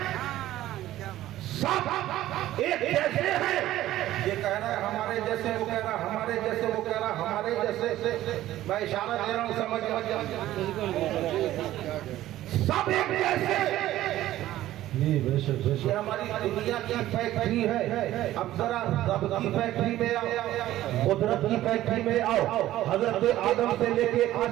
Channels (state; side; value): quieter; left; 14.4 dB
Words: सब एक जैसे हैं। ये कह रहा है हमारे जैसे, वो कह रहा है हमारे जैसे, वो कह रहा है हमारे जैसे। मैं इशारा दे रहा हूँ, समझ सब एक जैसे। ये हमारी दुनिया की फैक्ट्री है। अब जरा रब की फैक्ट्री में आओ, कुदरत की फैक्ट्री में आओ। हजरत आदम से लेके आज